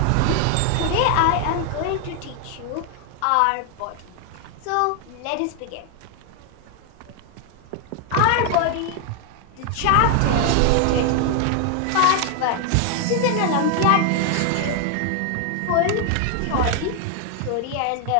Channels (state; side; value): different; both; correlation 0.00